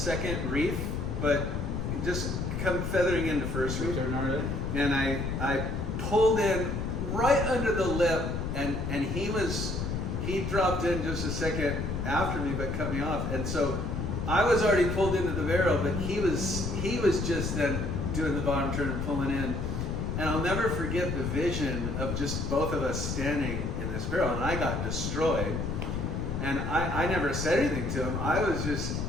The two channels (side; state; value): left; noise; rumble, 2 dB below the sound